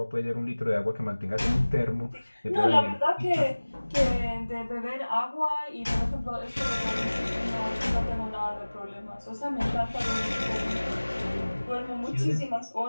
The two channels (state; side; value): inverted; both; correlation -1.00